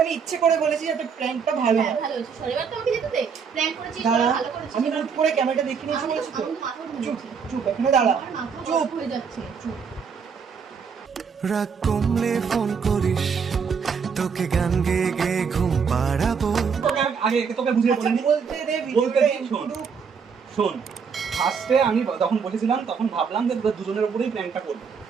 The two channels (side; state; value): left; quieter; 6.1 dB